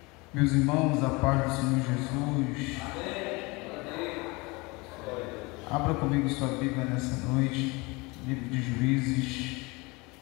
Meus irmãos, a paz do Senhor Jesus. Amém. Abra comigo sua Bíblia nessa noite, livro de Juízes,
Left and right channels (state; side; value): quieter; right; 25.5 dB